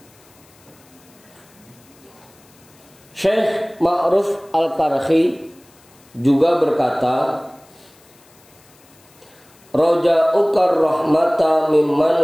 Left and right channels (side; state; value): left; noise; hiss, 29 dB below the sound